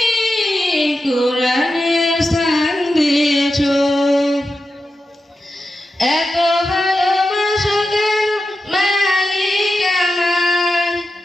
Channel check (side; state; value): both; normal; correlation 0.90